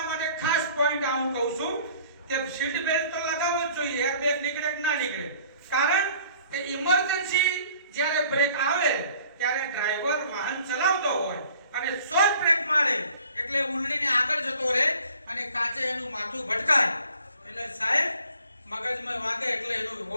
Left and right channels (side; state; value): both; inverted; correlation -0.53